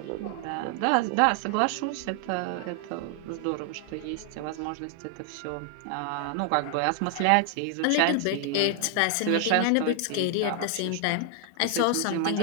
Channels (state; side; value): different; both; correlation 0.00